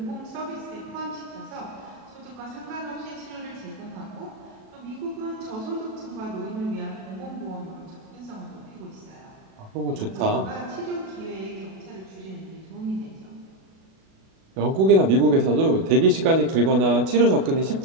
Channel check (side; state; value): left; late; 37 ms